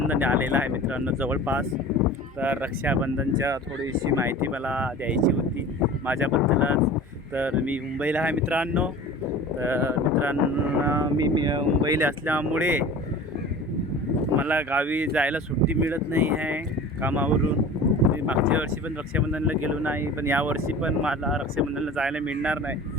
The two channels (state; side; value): normal; both; correlation 0.39